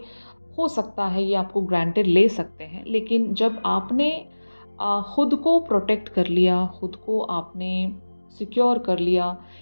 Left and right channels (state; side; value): inverted; both; correlation -1.00